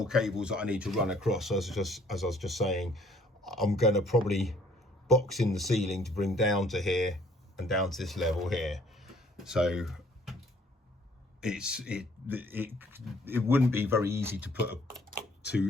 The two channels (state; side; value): normal; both; correlation 0.60